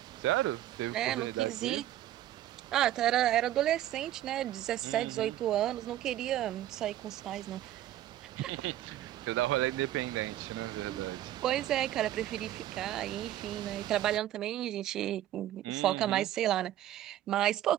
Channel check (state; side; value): quieter; left; 13.1 dB